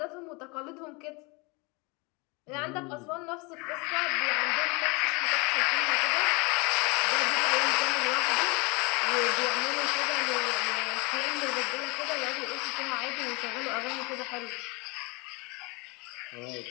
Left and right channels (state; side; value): quieter; right; 28.2 dB